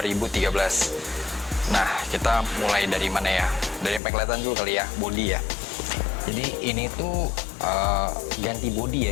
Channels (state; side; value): drops out; right; at 4.0 s